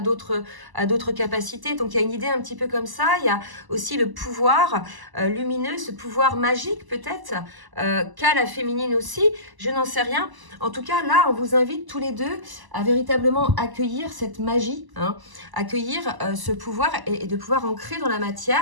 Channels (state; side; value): late; left; 1.0 ms